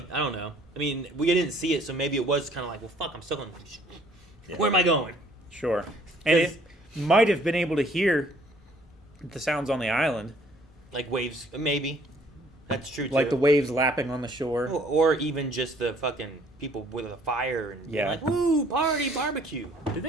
I don't know. I mean, we didn't see it, so maybe it was kind of like, well, fuck, I'm stuck on. Where am I going? Sure, and Because- it might have been able to hear the sounds on the island, Like waves, maybe. That's true too. like the waves lapping on the shore. or even just the fucking people with a fire and being Yeah. like, woo, party, barbecue. Do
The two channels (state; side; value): normal; both; correlation 0.60